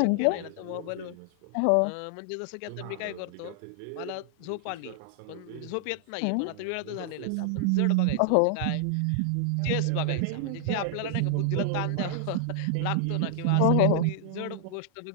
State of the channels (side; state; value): both; different; correlation -0.01